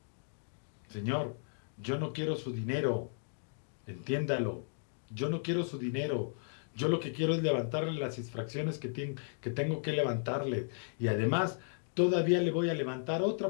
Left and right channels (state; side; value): silent; right; digital silence